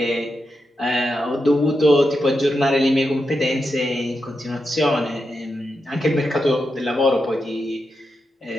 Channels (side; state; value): both; normal; correlation 0.87